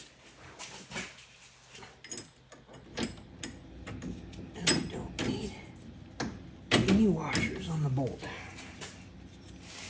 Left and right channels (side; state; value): both; identical; correlation 1.00